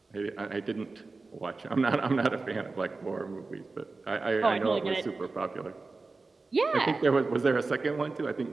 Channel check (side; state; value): left; quieter; 3.8 dB